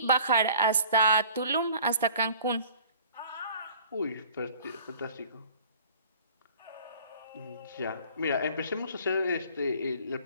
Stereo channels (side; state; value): both; inverted; correlation -0.50